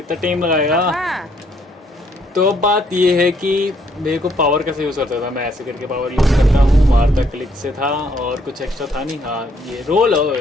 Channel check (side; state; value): both; normal; correlation 0.68